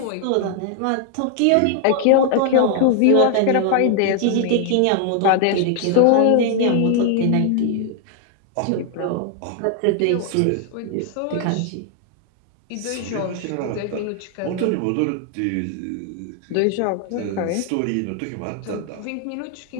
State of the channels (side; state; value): both; different; correlation 0.00